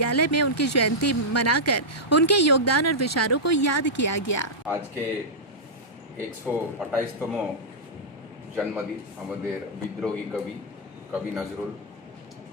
में उनकी जयंती मनाकर उनके योगदान और विचारों को याद किया गया। आज के 128तम जन्मदिन हमारे विद्रोही कवि नजरुल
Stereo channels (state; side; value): normal; both; correlation -0.10